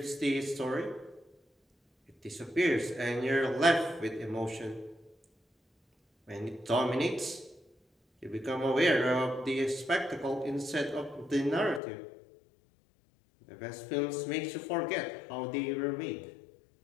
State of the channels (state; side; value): drops out; right; at 11.8 s